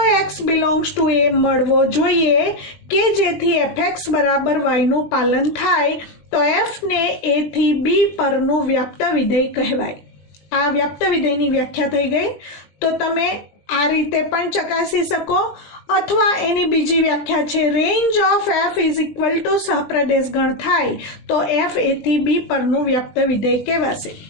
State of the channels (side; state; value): right; late; 20 ms